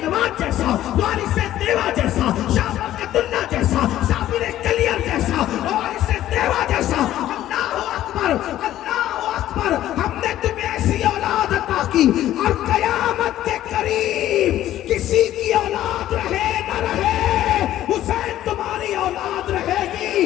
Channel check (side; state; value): right; quieter; 13.1 dB